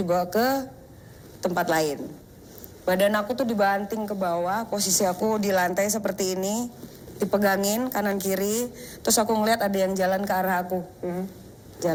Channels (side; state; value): both; identical; correlation 1.00